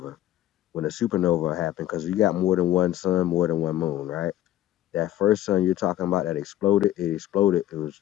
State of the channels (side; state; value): right; quieter; 13.4 dB